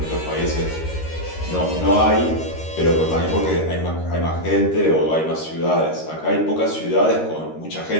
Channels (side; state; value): right; late; 13 ms